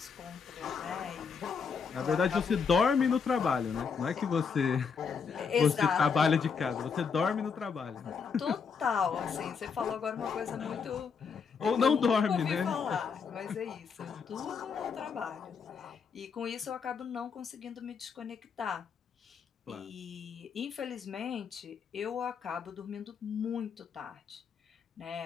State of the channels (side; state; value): right; quieter; 5.9 dB